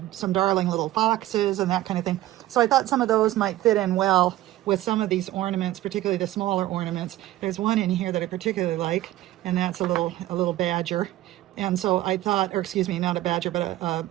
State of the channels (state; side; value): quieter; left; 15.3 dB